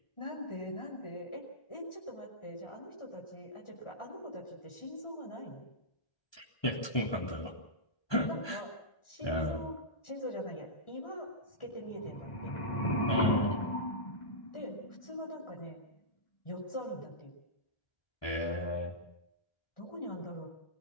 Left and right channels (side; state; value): right; late; 1.2 ms